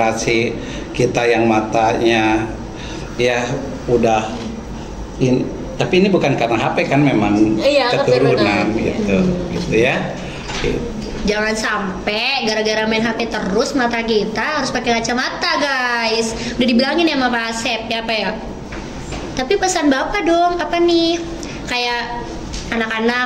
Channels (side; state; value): both; identical; correlation 1.00